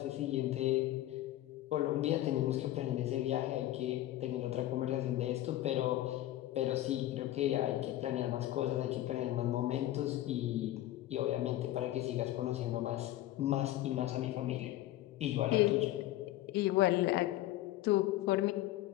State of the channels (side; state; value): right; quieter; 14.8 dB